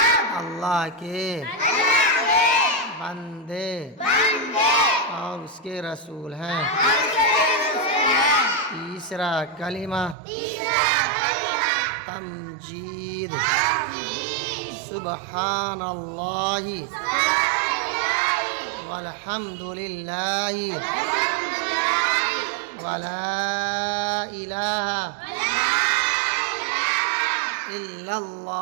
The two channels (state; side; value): drops out; left; at 10.2 s